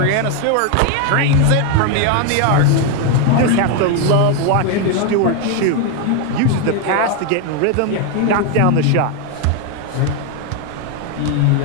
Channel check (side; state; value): both; different; correlation 0.01